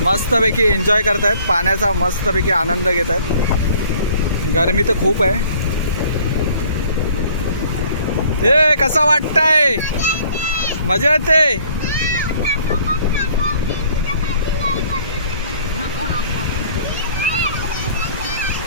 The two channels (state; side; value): inverted; both; correlation -0.56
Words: मस्तपैकी एन्जॉय करतायत, पाण्याचा मस्तपैकी आनंद घेत आहेत. गरमी तर खूप आहे. ए कसा वाटतंय? मजा येते.